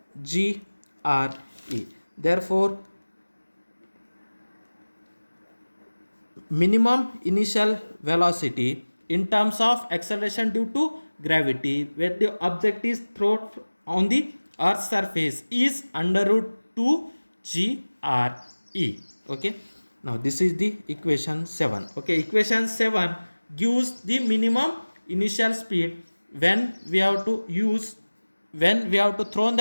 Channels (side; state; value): both; inverted; correlation -1.00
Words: g re. Therefore minimum initial velocity in terms of acceleration due to gravity where the object is thrown on the earth's surface is under root 2 g re. Okay, now this is the equation 7. Okay, equation 7 gives the minimum initial speed when we have to throw